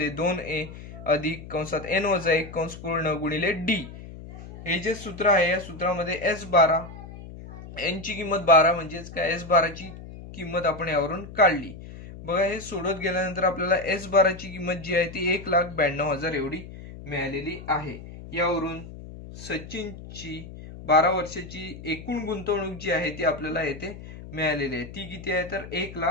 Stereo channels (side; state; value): left; noise; hum, 14 dB below the sound